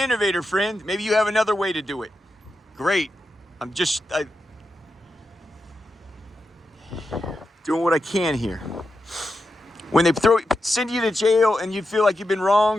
friend. Maybe you have another way to do it. Great. I'm just doing what I can here. When they send you to jail and you feel like you've been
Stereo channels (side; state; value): both; normal; correlation 0.88